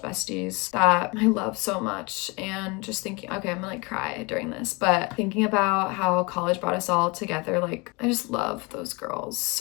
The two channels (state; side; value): quieter; right; 27.3 dB